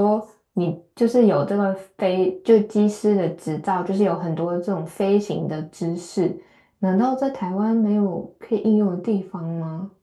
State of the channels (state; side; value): identical; both; correlation 1.00